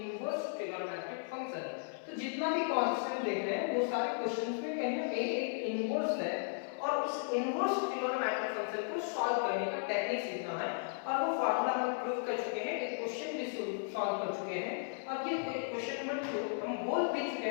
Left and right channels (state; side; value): silent; right; 54 dB below the other